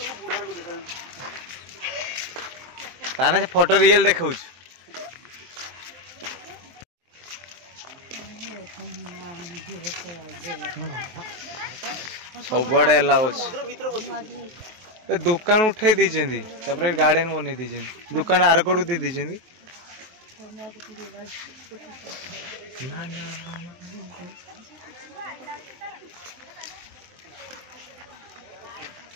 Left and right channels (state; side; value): late; left; 23 ms